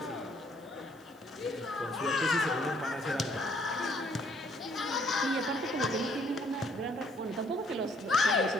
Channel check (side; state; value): right; noise; hiss, 29 dB below the sound